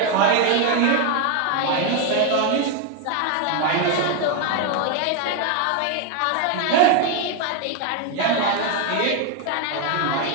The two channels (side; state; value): both; different; correlation 0.01